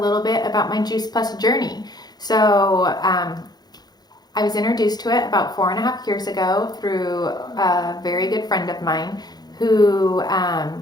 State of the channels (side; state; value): right; late; 0.19 ms